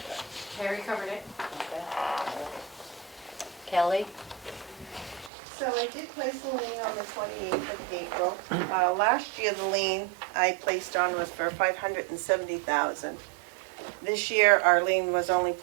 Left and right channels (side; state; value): left; drops out; at 5.3 s